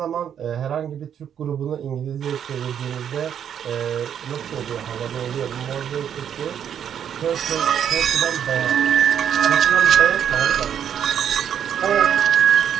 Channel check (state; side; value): quieter; left; 8.9 dB